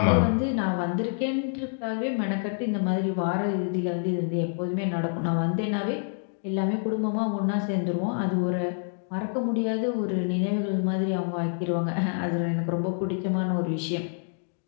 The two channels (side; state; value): right; silent; digital silence